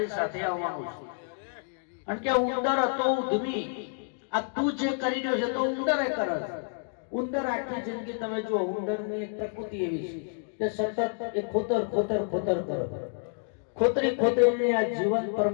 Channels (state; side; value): silent; right; digital silence